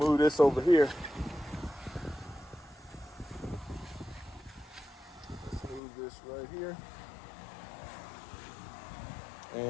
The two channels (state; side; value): drops out; right; at 5.8 s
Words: glue this over here. Let's move this right here.